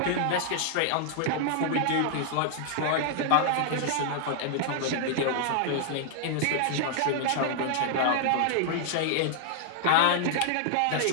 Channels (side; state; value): both; different; correlation -0.01